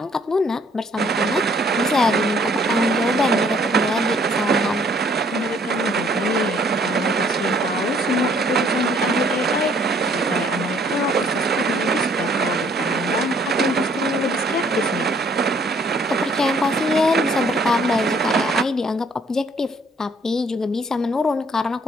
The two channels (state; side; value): normal; both; correlation 0.62